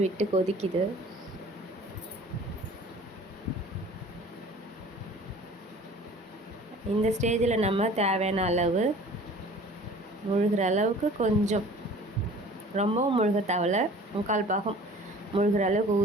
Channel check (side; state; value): both; normal; correlation 0.47